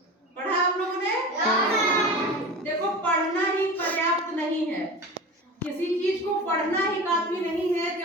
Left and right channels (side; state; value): both; normal; correlation 0.31